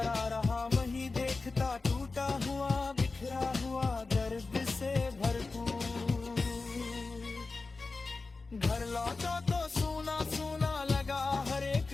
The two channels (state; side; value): quieter; right; 3.8 dB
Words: रहा वहीं देखता टूटा हुआ बिखरा हुआ दर्द